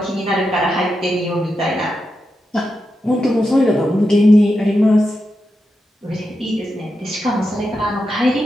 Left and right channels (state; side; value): normal; both; correlation 0.87